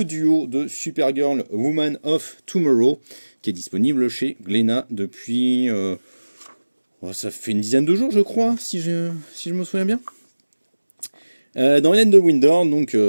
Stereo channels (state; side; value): inverted; both; correlation -1.00